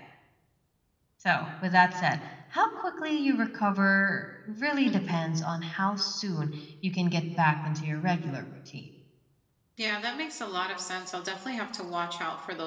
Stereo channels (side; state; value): both; identical; correlation 1.00